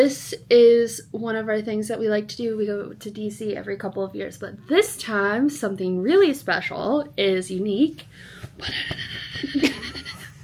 is one of our things that we like to do. We go to DC every couple of years. But this time, something really special is unique.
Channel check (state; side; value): identical; both; correlation 1.00